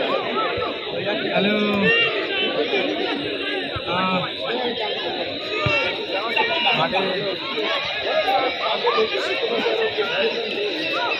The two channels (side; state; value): both; identical; correlation 1.00